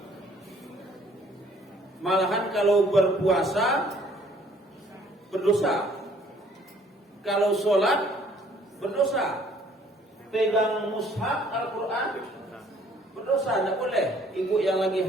Malahan kalau berpuasa berdosa, kalau sholat berdosa, pegang mushaf Al-Quran berdosa, tidak boleh. Ibu yang lagi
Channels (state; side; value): normal; both; correlation 0.59